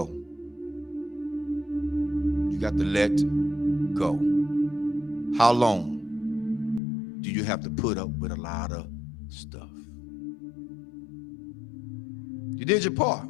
You got to let go. How long do you have to put up with a lot of stuff? You did your part.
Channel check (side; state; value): right; drops out; at 6.8 s